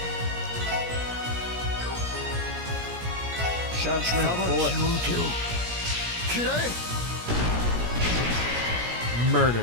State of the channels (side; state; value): left; late; 17 ms